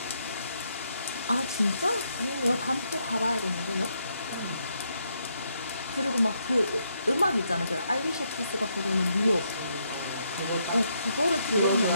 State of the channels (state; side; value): inverted; both; correlation -0.76